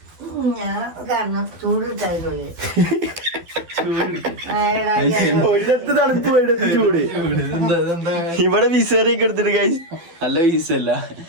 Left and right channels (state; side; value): late; left; 12 ms